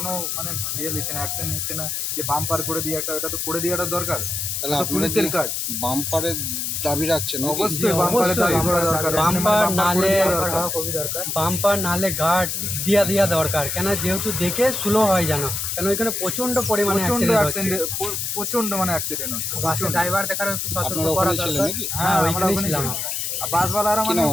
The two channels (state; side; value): noise; left; hiss, 2 dB below the sound